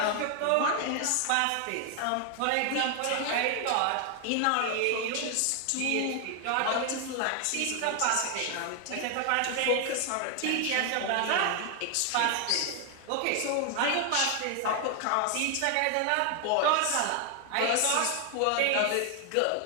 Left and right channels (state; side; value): different; both; correlation 0.00